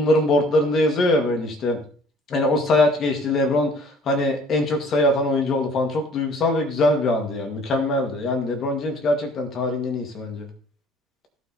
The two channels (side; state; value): both; normal; correlation 0.54